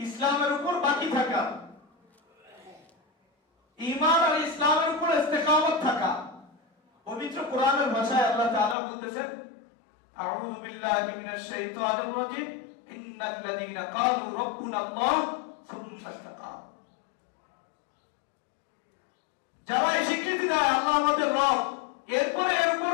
উপর বাকি থাকা, ঈমান আর ইসলামের উপর ইস্তেকামত থাকা। পবিত্র কোরআনের ভাষায় আল্লাহ তাআলা বলতেছেন, আউযু বিল্লাহি মিনাশ শাইতানির রাজীম, ইন্নাল লাযীনা ক্বালু রাব্বুনাল্লাহ সুম্মা ইসতাকামু। যারা এই স্বীকৃতি দেয় আল্লাহ আমাদের রব, এরপরে এর উপর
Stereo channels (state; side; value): drops out; right; at 8.8 s